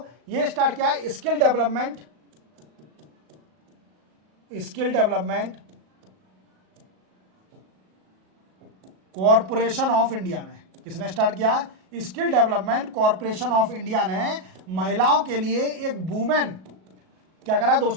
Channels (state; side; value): late; left; 37 ms